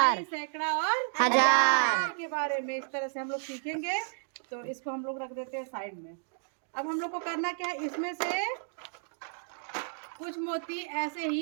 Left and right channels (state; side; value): silent; left; digital silence